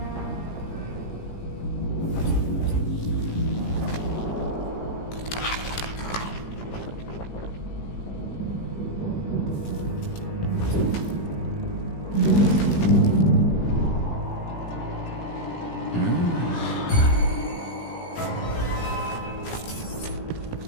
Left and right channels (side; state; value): right; late; 17 ms